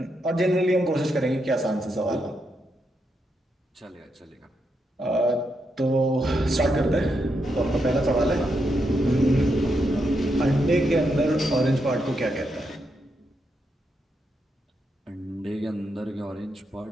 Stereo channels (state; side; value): normal; both; correlation 0.82